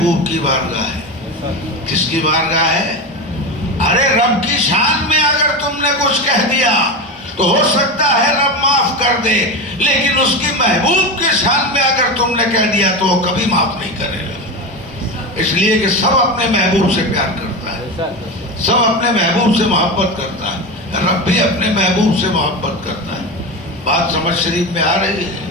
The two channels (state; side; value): normal; both; correlation 0.21